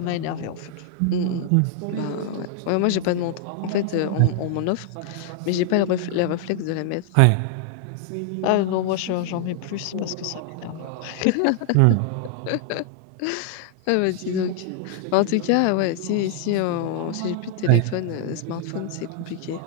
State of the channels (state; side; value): different; both; correlation 0.00